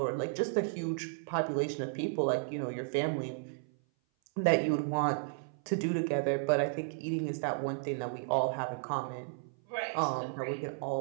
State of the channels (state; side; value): silent; left; 55 dB below the other